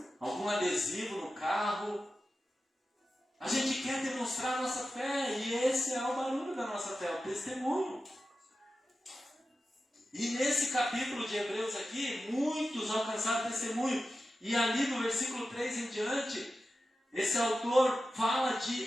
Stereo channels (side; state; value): both; normal; correlation 0.93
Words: algum adesivo no carro. A gente quer demonstrar a nossa fé e esse é o barulho da nossa fé, o testemunho. E nesse capítulo de Hebreus aqui, muitos alcançaram testemunho. E ali no versículo 3 em diante, esse autor fala